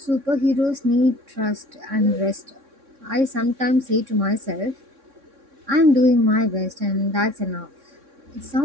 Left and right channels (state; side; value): late; left; 3.6 ms